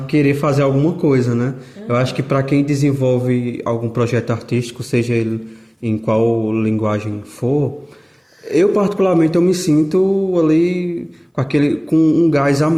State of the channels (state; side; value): identical; both; correlation 1.00